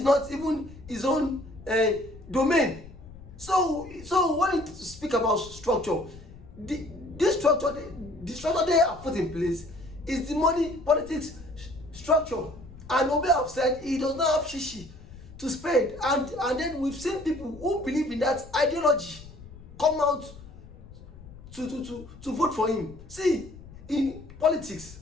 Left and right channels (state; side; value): noise; left; rumble, 18 dB below the sound